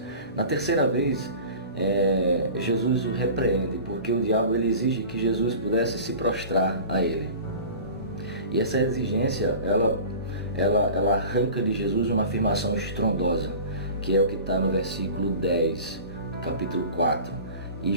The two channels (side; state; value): both; inverted; correlation -0.38